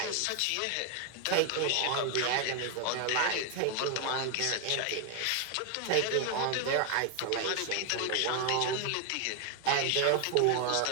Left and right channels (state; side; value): different; both; correlation 0.00